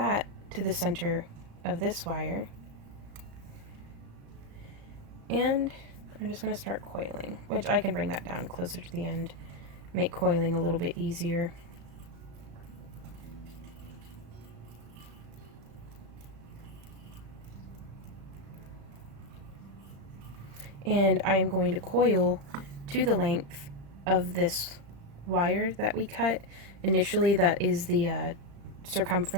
to the center of this wire. And I'm just going to start coiling, which I can bring that down closer to the end, make coiling a little bit easier. And I am going to coil to the length of this wire that we cut. Initially, that is the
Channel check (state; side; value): late; left; 35 ms